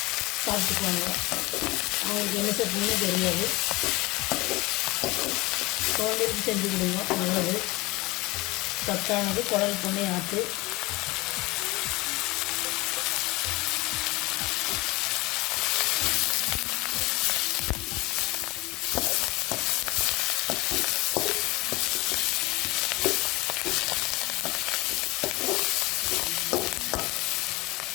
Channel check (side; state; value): right; quieter; 22.2 dB